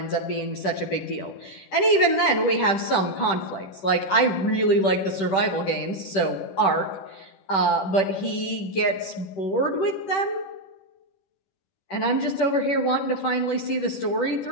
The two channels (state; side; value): late; right; 10 ms